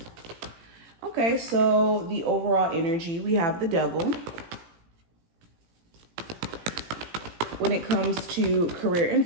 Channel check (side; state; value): left; late; 17 ms